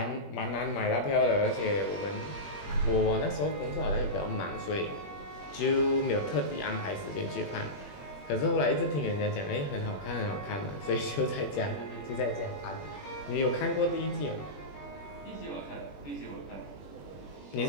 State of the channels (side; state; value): right; late; 21 ms